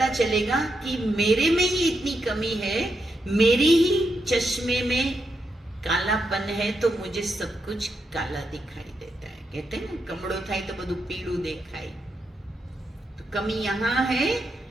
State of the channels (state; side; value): normal; both; correlation 0.83